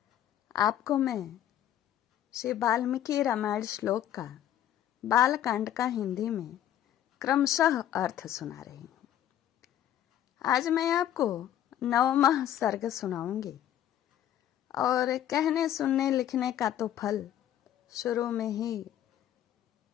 आपको मैं श्री वाल्मीकि रामायण श्लोक का बालकांड का हिंदी में क्रमशः अर्थ सुना रही हूँ। आज मैं आपको 9वां सर्ग सुनाऊंगी और कहने सुनने लिखने का तो फल शुरू में ही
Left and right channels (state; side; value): quieter; right; 11.3 dB